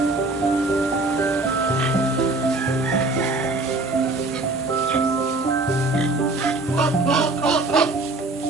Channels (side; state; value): left; quieter; 3.1 dB